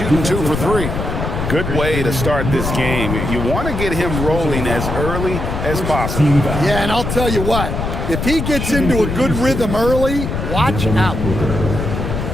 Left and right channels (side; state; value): left; noise; rumble, 3 dB below the sound